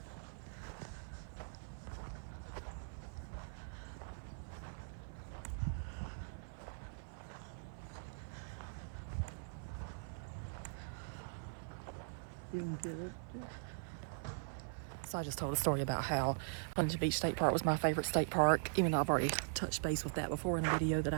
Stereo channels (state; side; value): silent; left; 50 dB below the other